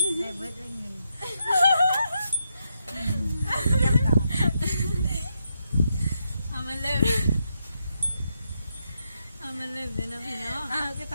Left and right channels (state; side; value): inverted; both; correlation -0.81